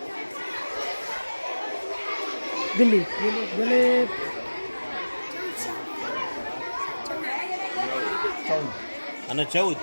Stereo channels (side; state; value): both; inverted; correlation -1.00